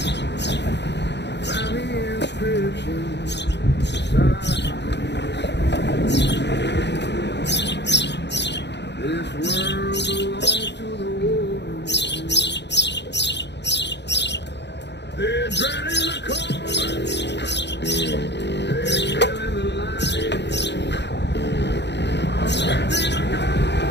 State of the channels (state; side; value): late; right; 0.50 ms